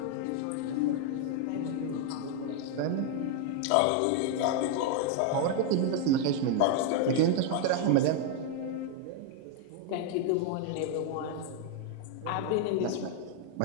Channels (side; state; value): both; different; correlation 0.00